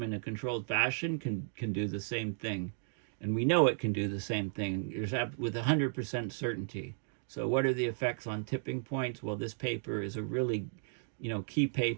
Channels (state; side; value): silent; left; digital silence